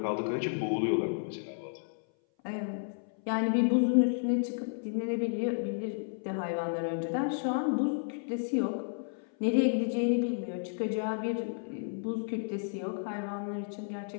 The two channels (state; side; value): silent; right; 56 dB below the other